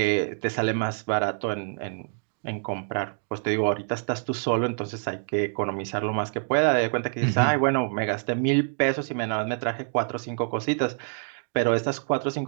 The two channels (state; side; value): silent; left; 58 dB below the other